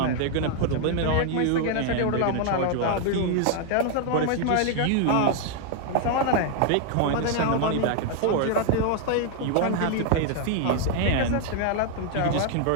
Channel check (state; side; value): different; both; correlation 0.00